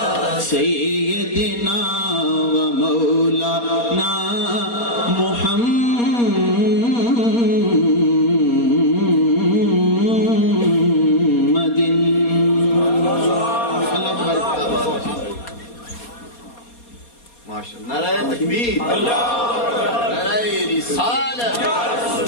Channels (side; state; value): right; late; 4.2 ms